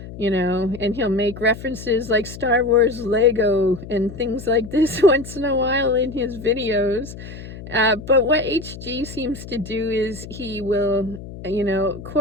and he'll make references like Star Wars Lego and things like this once in a while in his videos. But what H.G. seems to do is he will,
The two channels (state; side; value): noise; left; hum, 13 dB below the sound